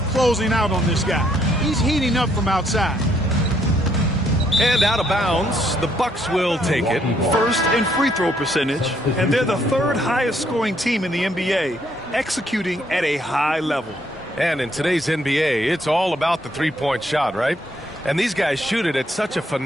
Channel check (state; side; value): normal; both; correlation 0.70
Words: closing out on this guy. He's heating up from outside. And out of bounds, the Bucks will take it. First in free throw percentage, and they're the third highest scoring team in the NBA, executing at a high level. And in today's NBA, it's all about the three-point shot, right? And these guys shoot it at such a